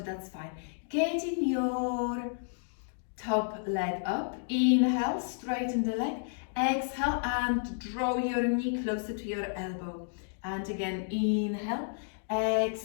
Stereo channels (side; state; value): right; silent; digital silence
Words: that's fine. Getting your top leg up. Inhale, straighten the leg. Exhale and draw your knee closer to your elbow. And again, inhale,